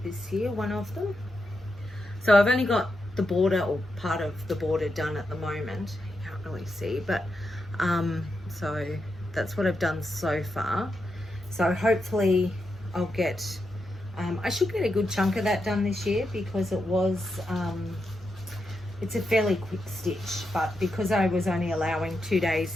this year, one of them. So I've only got the border, or part of the border, done at the moment. You can't really see, but so that's what I've done so far. So hopefully I'll get, I should get a good chunk of that done this year, because it was, it's a fairly quick stitch, but because I was only allowing 2 days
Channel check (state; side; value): normal; both; correlation 0.85